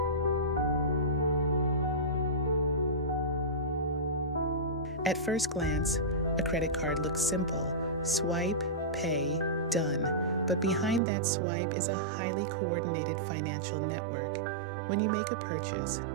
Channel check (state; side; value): drops out; left; at 11.0 s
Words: At first glance, a credit card looks simple: swipe, pay, done. But behind that swipe is a highly coordinated financial network. When you make a purchase,